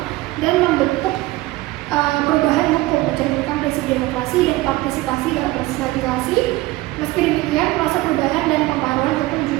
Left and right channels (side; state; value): left; quieter; 18.8 dB